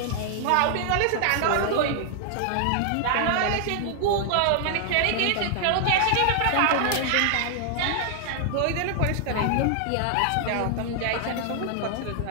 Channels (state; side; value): different; both; correlation 0.00